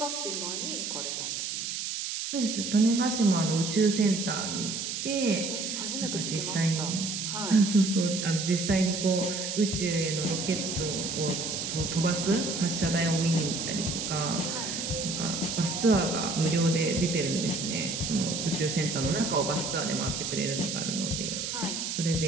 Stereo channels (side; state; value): right; noise; hiss, 3 dB below the sound